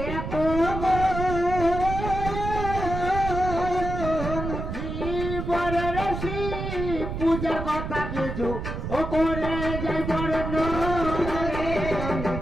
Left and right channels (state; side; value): noise; right; rumble, 5 dB below the sound